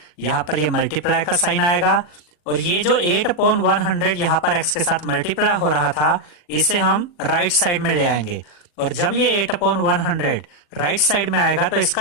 यहां पर ये मल्टीप्लाई का साइन आएगा, और ये जो 8/100 यहां पर x के साथ मल्टीप्लाई हो रहा था इसे हम राइट साइड में ले आएंगे, और जब ये 8/100 राइट साइड में आएगा तो इसका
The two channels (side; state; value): right; late; 40 ms